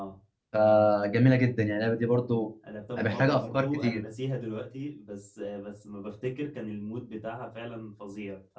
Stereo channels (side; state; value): both; identical; correlation 1.00